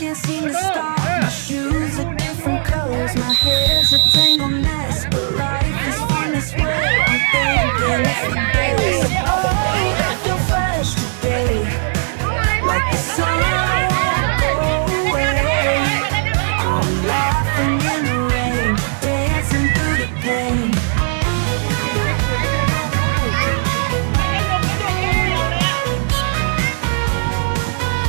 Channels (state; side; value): silent; left; 65 dB below the other